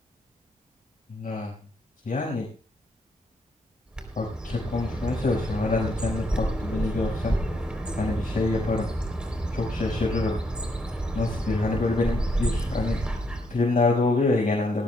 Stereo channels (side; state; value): both; normal; correlation 0.75